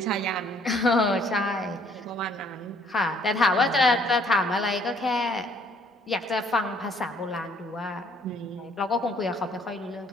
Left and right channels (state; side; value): normal; both; correlation 0.62